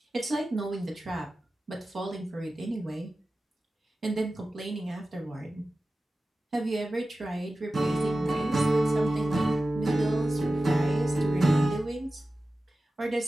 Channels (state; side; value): normal; both; correlation 0.95